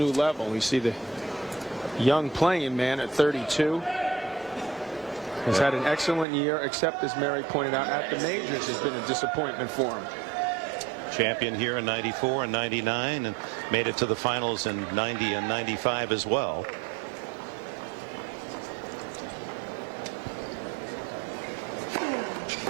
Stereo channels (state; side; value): drops out; left; at 6.2 s